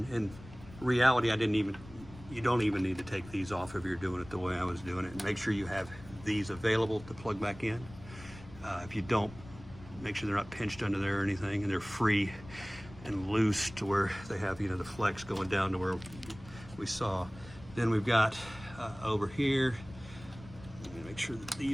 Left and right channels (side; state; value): left; noise; rumble, 18 dB below the sound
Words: reality, you don't even need to take these off if you're doing it the way I was doing it. And make sure you have these available to plug back in. If you don't, make sure they're not pinched under there or anything, and they're free and loose to where they have, the flex going down to where we saw. Then we've got over here, make sure that